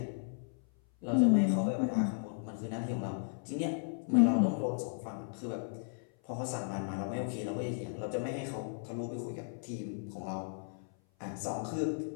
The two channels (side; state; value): right; silent; 54 dB below the other